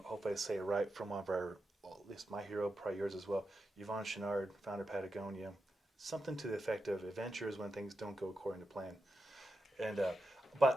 hopefully I say it right, from one of our, well, at least my hero, probably yours as well, Yvon Chouinard, founder of Patagonia. Something to the effect of, adventure is when things don't go according to plan. And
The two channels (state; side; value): normal; both; correlation 0.88